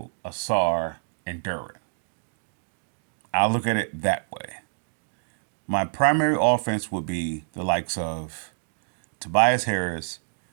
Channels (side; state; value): left; silent; digital silence